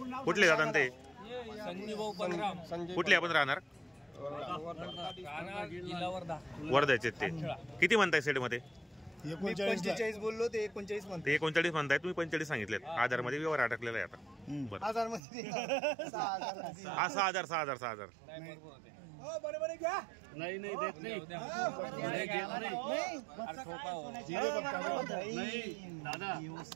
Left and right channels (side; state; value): left; drops out; at 15.2 s